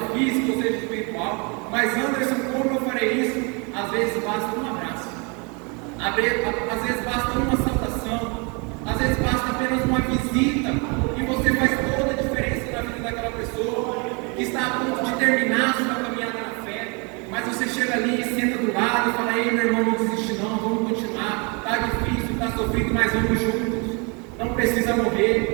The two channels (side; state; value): left; quieter; 32.2 dB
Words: física ou seja espiritual. Mas Anderson, como eu farei isso? Às vezes basta um abraço, às vezes basta uma saudação, às vezes basta apenas uma visita, e você faz toda a diferença na vida daquela pessoa que está a ponto de terminar a sua caminhada na fé, mas você chega ali e senta do lado e fala: ei, meu irmão, não desiste não, vamos continuar, está difícil, está sofrido, mas vamos juntos, não precisa